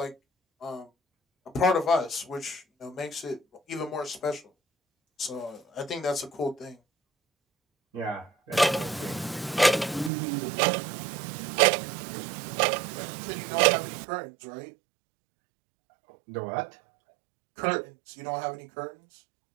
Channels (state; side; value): drops out; left; at 10.1 s